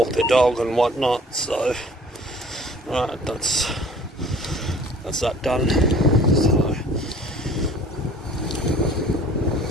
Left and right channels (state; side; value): normal; both; correlation 0.50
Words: their dog and whatnot. So, alright, that's that done. So,